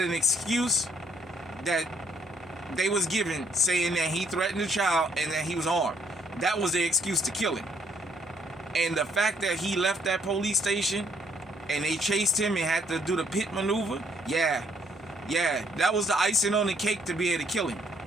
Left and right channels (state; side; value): normal; both; correlation 0.66